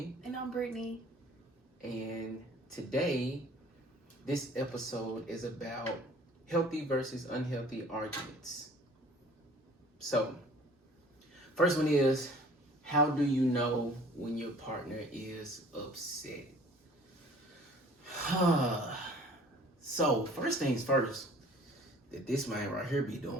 And I'm Brittany. And today, this episode is about healthy versus unhealthy arguments. So, first one is, how do you know when your partner is upset? So, first things first, that this man right here be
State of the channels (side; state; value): both; normal; correlation 0.51